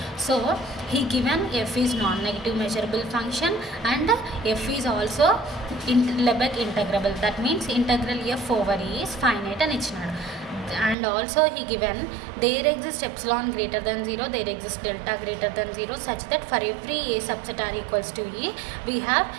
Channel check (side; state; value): left; drops out; at 11.0 s